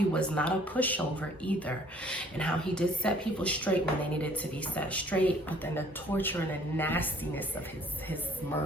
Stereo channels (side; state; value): both; normal; correlation 0.57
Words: was not a pushover either, and how he did set people straight when they needed to be set straight, but then the torture and the nastiness of his